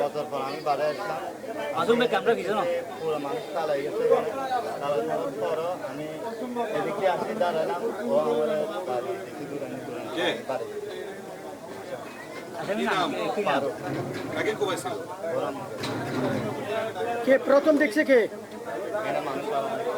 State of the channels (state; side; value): identical; both; correlation 1.00